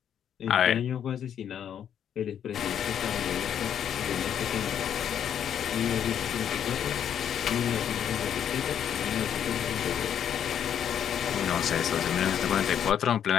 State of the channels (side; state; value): right; quieter; 9.1 dB